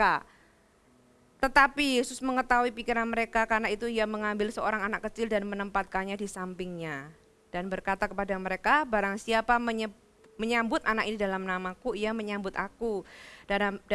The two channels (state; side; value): identical; both; correlation 1.00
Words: Tetapi Yesus mengetahui pikiran mereka, karena itu ia mengambil seorang anak kecil dan menempatkannya di sampingnya. Dan berkata kepada mereka, barang siapa menyambut anak ini dalam namaku, ia menyambut aku. Dan